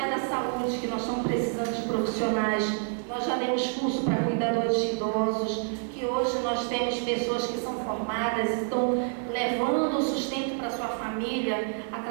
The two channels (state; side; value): silent; left; 56 dB below the other